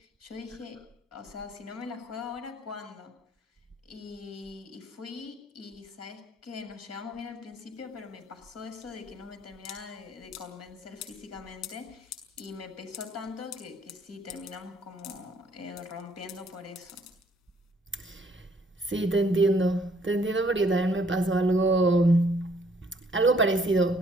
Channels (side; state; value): both; normal; correlation 0.64